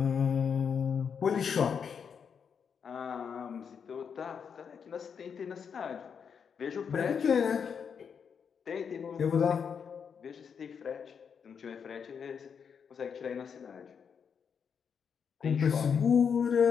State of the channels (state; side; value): quieter; right; 6.8 dB